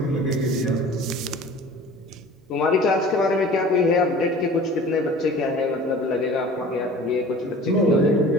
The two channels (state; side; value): normal; both; correlation 0.43